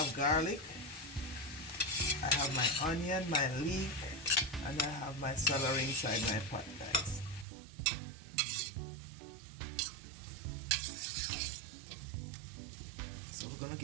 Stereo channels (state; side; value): drops out; left; at 7.5 s